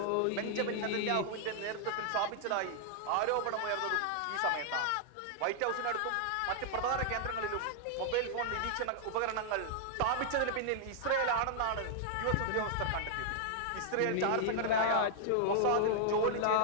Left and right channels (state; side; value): different; both; correlation -0.01